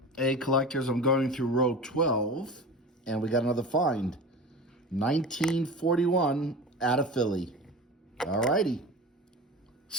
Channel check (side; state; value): both; normal; correlation 0.33